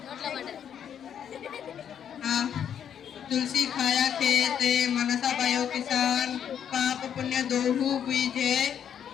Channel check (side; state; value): right; quieter; 8.8 dB